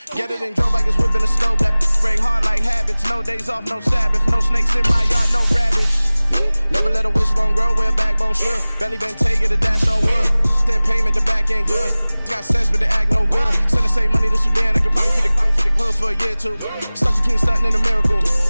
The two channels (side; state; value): both; inverted; correlation -0.99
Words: Get it and drove like it's whipping a stove. That break hard like habits. No days off, no Sabbath. No snakes in my yard, no rabbits. Never let a wishbone grow where a backbone should. Belly been taking the dash on wood. Then payment, the back end good. Got sense, but they act no good. Send the same money to Sudan. I could probably feed the hood for a year or two. Stuck between stunting and a miracle.